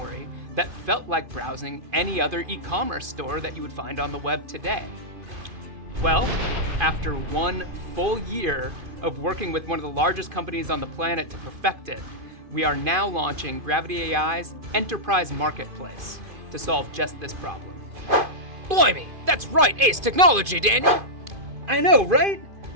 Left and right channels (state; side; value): late; left; 2.5 ms